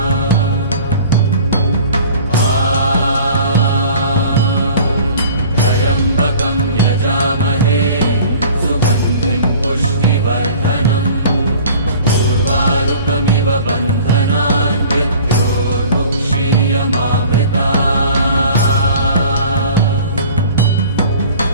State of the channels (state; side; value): inverted; both; correlation -0.46